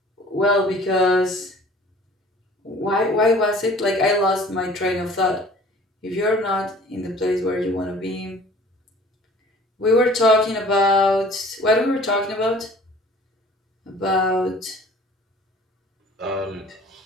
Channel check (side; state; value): both; normal; correlation 0.50